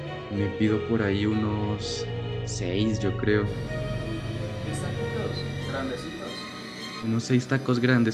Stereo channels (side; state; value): both; identical; correlation 1.00